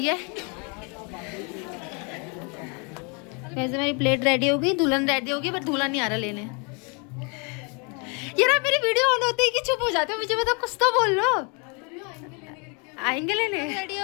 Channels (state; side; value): quieter; right; 33.7 dB